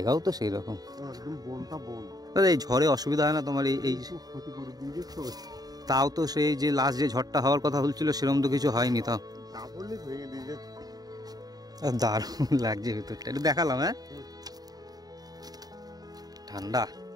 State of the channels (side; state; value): left; late; 0.18 ms